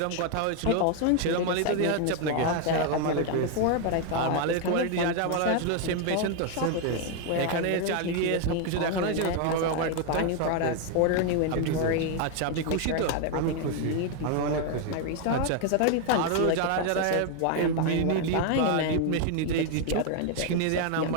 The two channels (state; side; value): different; both; correlation 0.01